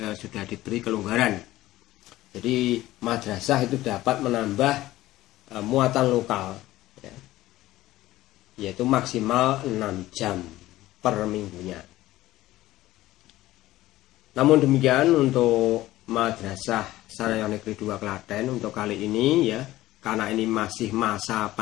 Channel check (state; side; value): quieter; right; 16.2 dB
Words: diberi kelonggaran. Jadi madrasah itu dapat menambah muatan lokal ya, yaitu maksimal 6 jam per minggunya. Namun demikian untuk Madrasah Sanaya Negeri 2 Klaten untuk kali ini ya, karena ini masih masa